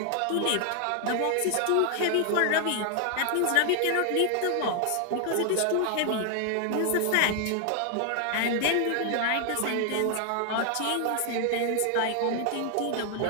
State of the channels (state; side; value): different; both; correlation 0.00